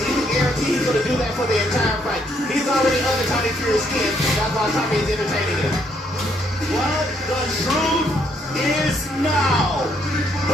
you can guarantee he's going to do that for the entire fight. He's already under Tommy Fury's skin, that's why Tommy is entertaining him. Well, the truth is now.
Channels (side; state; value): both; normal; correlation 0.71